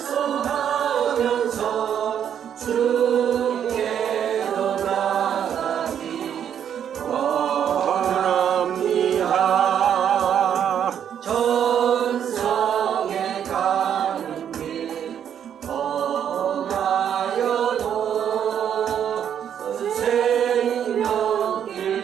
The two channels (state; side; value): quieter; left; 9.0 dB